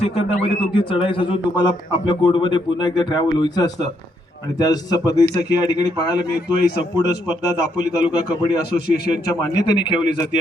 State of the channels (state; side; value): normal; both; correlation 0.75